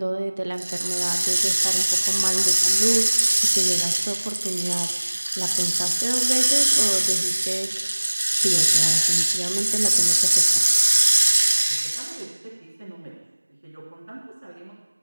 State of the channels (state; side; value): inverted; both; correlation -1.00